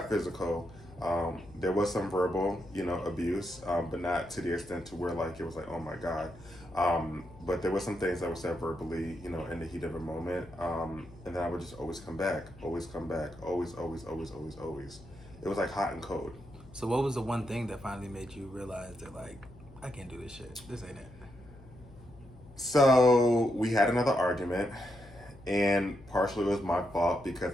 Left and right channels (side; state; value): left; noise; hum, 21 dB below the sound